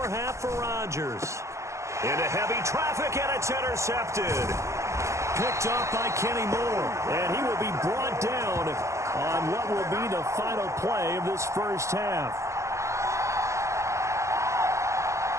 half for Rodgers. Into heavy traffic, and it's intercepted. Picked off by Kenny Moore, and he will be brought down on what will be the final play of this first half.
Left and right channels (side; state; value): left; late; 0.14 ms